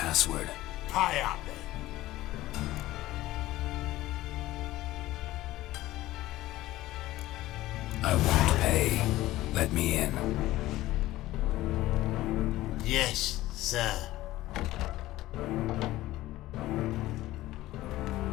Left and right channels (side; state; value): right; quieter; 16.4 dB